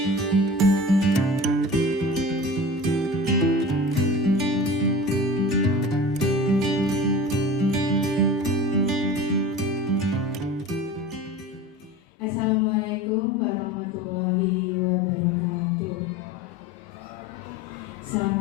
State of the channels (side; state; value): both; normal; correlation 0.36